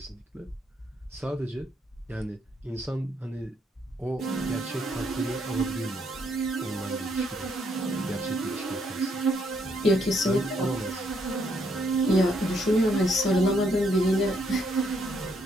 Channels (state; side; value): normal; both; correlation 0.73